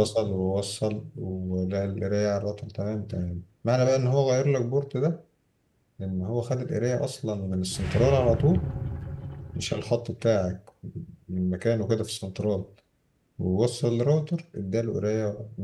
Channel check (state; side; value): identical; both; correlation 1.00